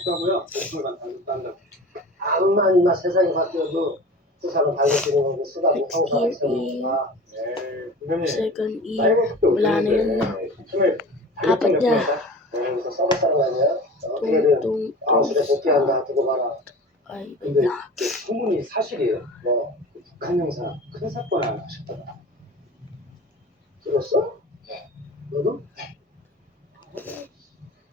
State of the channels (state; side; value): normal; both; correlation 0.37